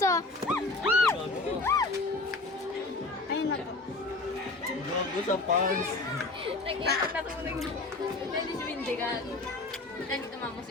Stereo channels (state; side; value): quieter; right; 3.2 dB